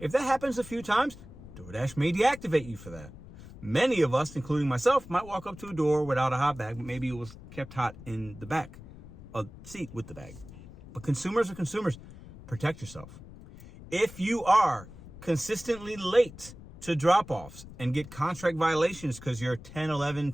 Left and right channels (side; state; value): left; noise; rumble, 17 dB below the sound